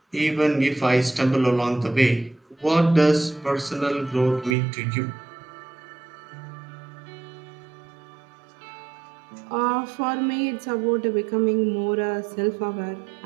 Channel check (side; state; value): left; drops out; at 4.5 s